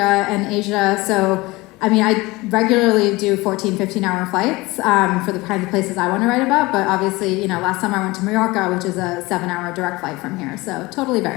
and Asia. So, I mean, I regularly do 14, 15-hour flights for the kinds of places I want to write about. But obviously, last summer I went to Mallorca, which is a 7-hour direct flight from here. So, totally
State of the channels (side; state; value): right; quieter; 21.8 dB